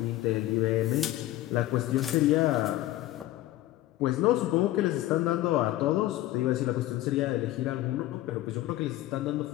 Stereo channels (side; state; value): right; quieter; 15.5 dB